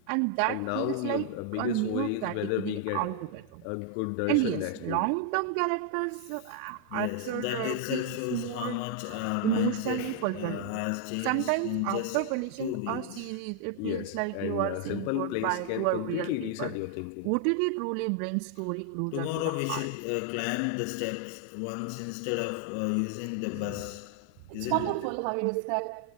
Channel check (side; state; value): both; different; correlation 0.00